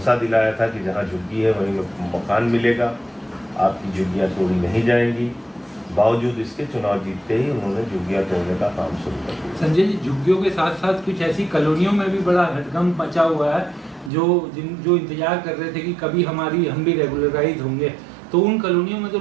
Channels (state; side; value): drops out; left; at 14.1 s